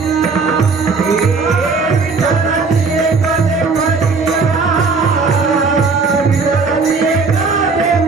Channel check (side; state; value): left; quieter; 4.5 dB